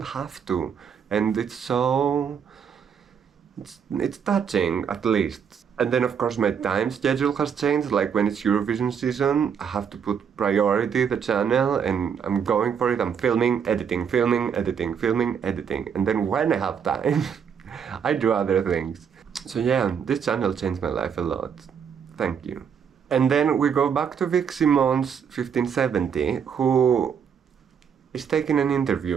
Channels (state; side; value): quieter; left; 7.3 dB